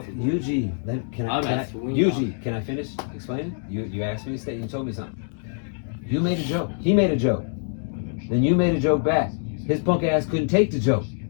a Yuji, can I Yuji, can I finish explaining? You asked me to stay. You told me something. You made a joke. He made a joke. Then you made a joke back. His punk ass couldn't take the joke,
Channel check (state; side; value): silent; right; 62 dB below the other